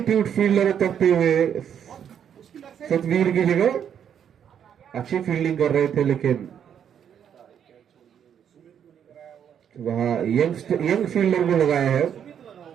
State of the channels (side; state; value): left; quieter; 8.7 dB